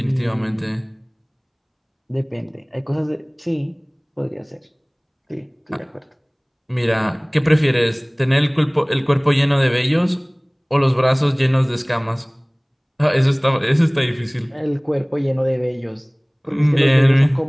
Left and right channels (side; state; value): both; identical; correlation 1.00